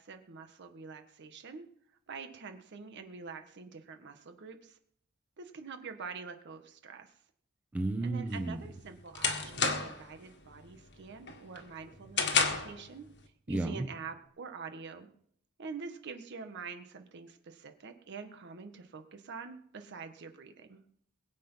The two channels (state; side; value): normal; both; correlation 0.19